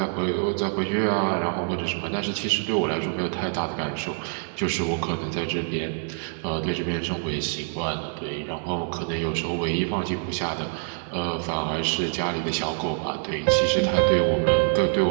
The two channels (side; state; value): left; silent; 61 dB below the other